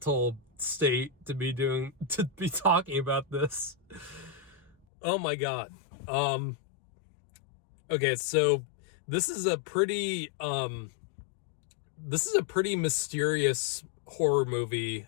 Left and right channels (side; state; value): right; drops out; at 4.9 s